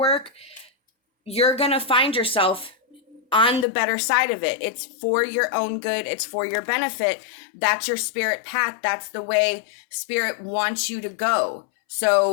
you're going to find yourself on the better side of it. It's for your own good. It's for your benefit. That's your spirit path. That's the way Spirit wants you to go.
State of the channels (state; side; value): drops out; right; at 3.7 s